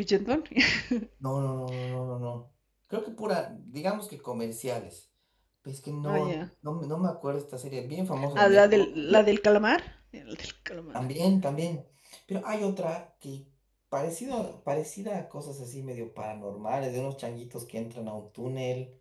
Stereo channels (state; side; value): identical; both; correlation 1.00